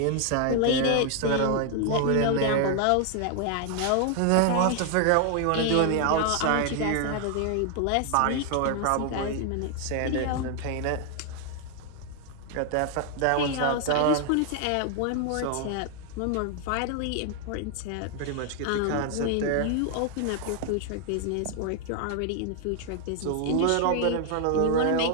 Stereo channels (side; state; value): both; different; correlation 0.00